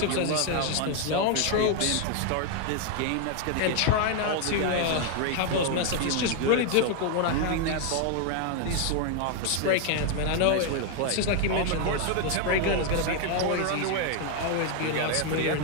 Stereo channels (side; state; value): both; different; correlation 0.00